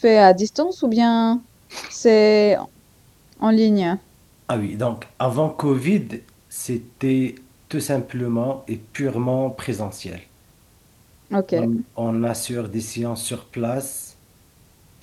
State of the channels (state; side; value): identical; both; correlation 1.00